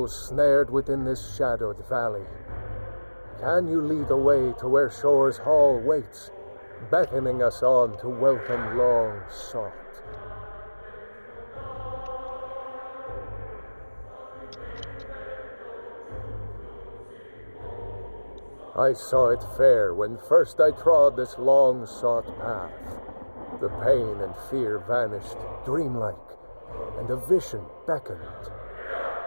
snared within this shadowed valley. Can you lead the way to where Shore's Hall waits, beckoning us on to welcome long sought? I saw it fair when first I trod this long-sought path. The pain and fear vanished, dreamlike, and a vision beckoned.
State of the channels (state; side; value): inverted; both; correlation -1.00